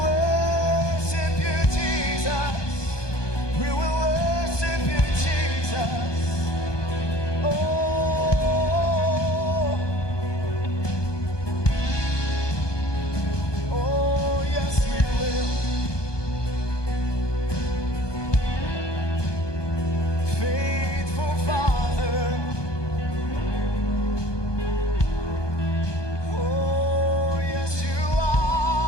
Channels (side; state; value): right; late; 1.2 ms